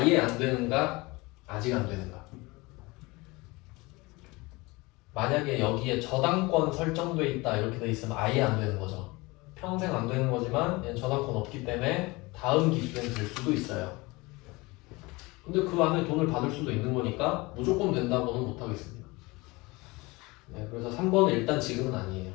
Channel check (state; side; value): quieter; right; 23.5 dB